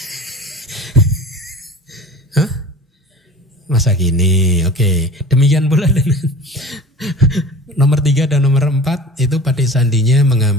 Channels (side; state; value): both; normal; correlation 0.40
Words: Hah? Masa gini, oke. Demikian pula dengan nomor 3 dan nomor 4 itu patik sandinya